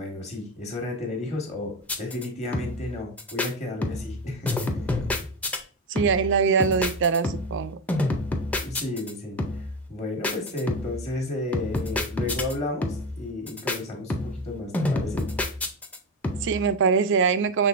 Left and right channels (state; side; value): normal; both; correlation 0.17